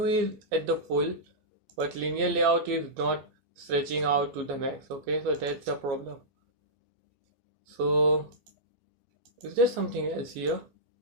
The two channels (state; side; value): late; left; 14 ms